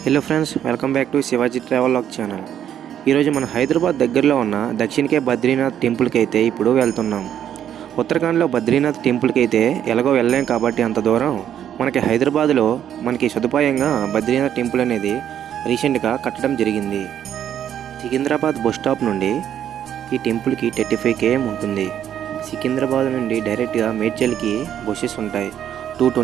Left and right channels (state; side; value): quieter; left; 10.0 dB